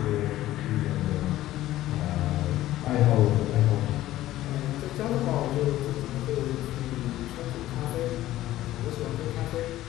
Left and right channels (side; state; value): right; quieter; 14.8 dB